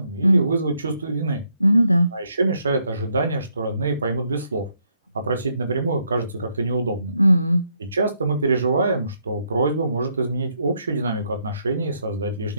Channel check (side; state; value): both; inverted; correlation -0.75